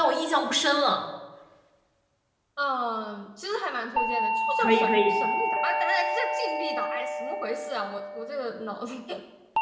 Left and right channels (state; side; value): identical; both; correlation 1.00